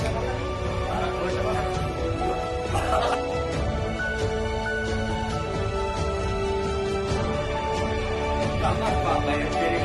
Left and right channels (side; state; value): both; identical; correlation 1.00